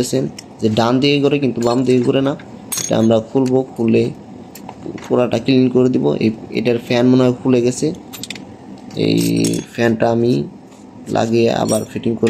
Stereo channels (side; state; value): both; identical; correlation 1.00